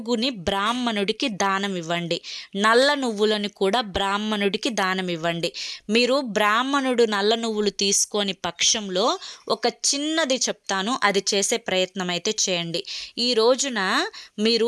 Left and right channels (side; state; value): both; identical; correlation 1.00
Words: బ్రాహ్మణుడికి దానం ఇవ్వండి. నల్ల నువ్వులను కూడా బ్రాహ్మణుడికి దానం ఇవ్వండి. మీరు బ్రాహ్మణుడు నల్ల నువ్వులు తీసుకొని పక్షంలో ఒక చిన్నది చెప్తాను, అది చేసే ప్రయత్నం అయితే చేయండి. ఈ రోజున